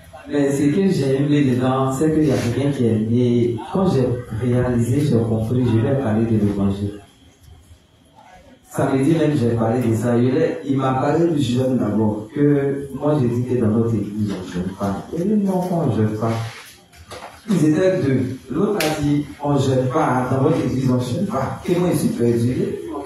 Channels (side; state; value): both; identical; correlation 1.00